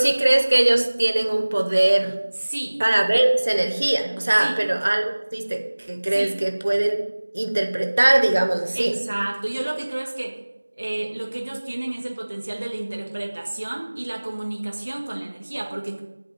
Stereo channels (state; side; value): inverted; both; correlation -1.00